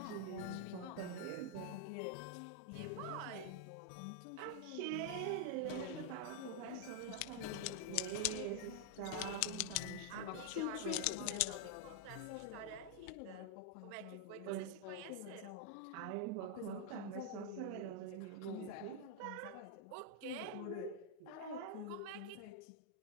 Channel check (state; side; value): different; both; correlation 0.00